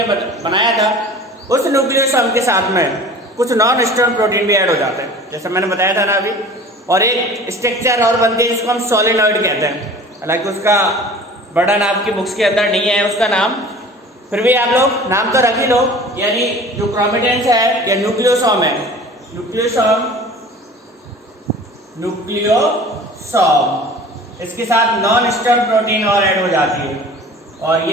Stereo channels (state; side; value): normal; both; correlation 0.43